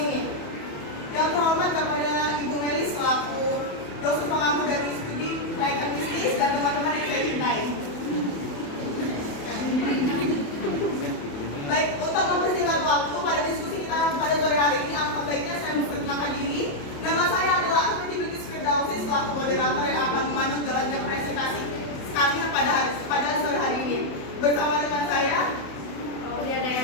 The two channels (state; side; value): late; right; 28 ms